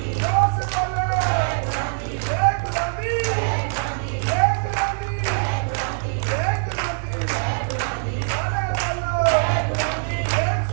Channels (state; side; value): silent; left; 64 dB below the other